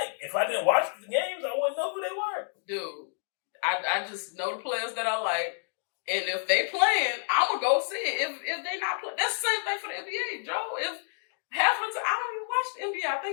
If I didn't watch the games, I wouldn't know who they were. Dude, I just know the players that I like. And if they playing, I'm going to go see it. If they not playing, that's the same thing for the NBA, Joe. If half of the time, I don't even watch the NBA. I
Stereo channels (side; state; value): right; silent; digital silence